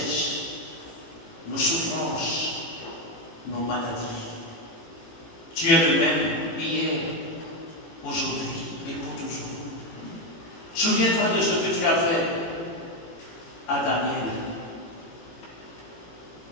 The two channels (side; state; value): right; late; 18 ms